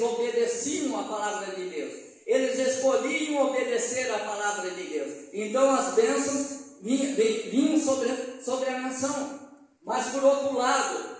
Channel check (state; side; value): identical; both; correlation 1.00